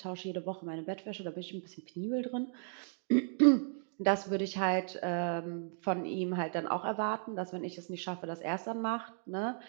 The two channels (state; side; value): silent; left; digital silence